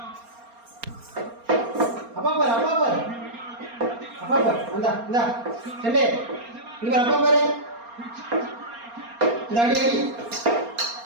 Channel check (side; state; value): left; late; 4.3 ms